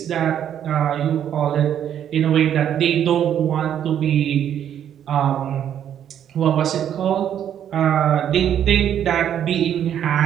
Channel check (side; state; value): left; quieter; 9.7 dB